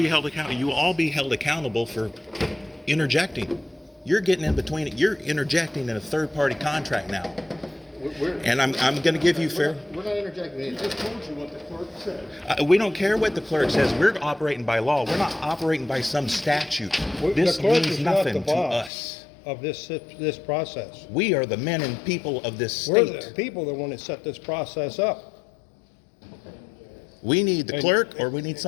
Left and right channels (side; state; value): right; drops out; at 18.9 s